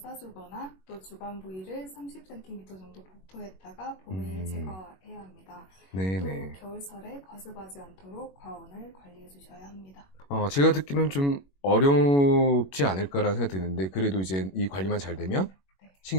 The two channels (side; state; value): right; late; 21 ms